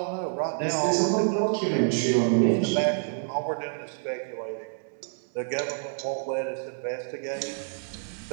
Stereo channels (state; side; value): silent; left; 60 dB below the other